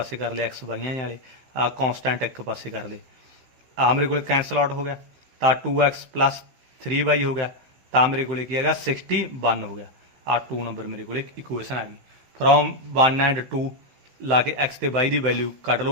ਕਰ ਲਿਆ, XY ਵਾਲੇ ਆ ਕੌਨਸਟੈਂਟ ਇੱਕ ਪਾਸੇ ਕਰ ਲਏ। ਆ ਮੇਰੇ ਕੋਲੇ ਕੈਂਸਲ ਆਊਟ ਹੋ ਗਿਆ, ਤਾਂ 2X ਪਲੱਸ 3Y ਹੋ ਗਿਆ। ਤਾਂ ਮੇਰੇ ਕੋਲੇ ਕੀ ਹੈਗਾ 61 ਹੋ ਗਿਆ। ਆ 2 ਨੰਬਰ ਮੇਰੇ ਕੋਲੇ ਇਕੁਏਸ਼ਨ ਆ ਗਈ। ਫਰੋਮ 1 ਐਂਡ 2 ਲਾ ਕੇ x ਤੇ y ਦੀ ਵੈਲਿਊ ਕੱਢ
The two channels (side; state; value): left; late; 15 ms